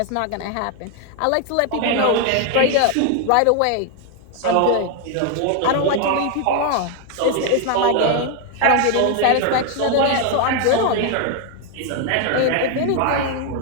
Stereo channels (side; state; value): both; different; correlation 0.01